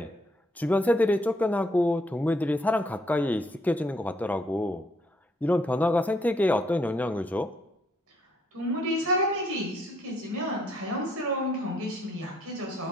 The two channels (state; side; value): normal; both; correlation 0.70